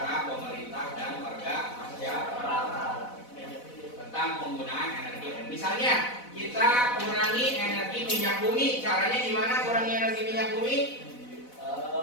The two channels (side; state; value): right; late; 4.0 ms